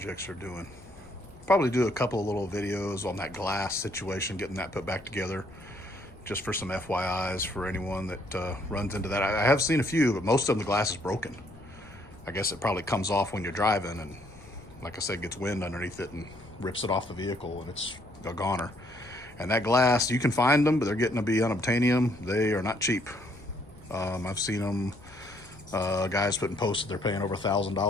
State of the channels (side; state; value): left; noise; rumble, 21 dB below the sound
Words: are doing. Probably do a couple of little videos on that glass situation, getting that put back together, just for some FYIs for anyone that runs into that. I have seen a few, but most of them, the glass is broken. I guess it probably comes off when you're driving, and like I said, gets wind underneath it and rips it off the vehicle, and it's a goner. And that glass, you can find them, but they're getting to be unobtainium. They are not cheap. I've seen them, guys putting posts that they're paying over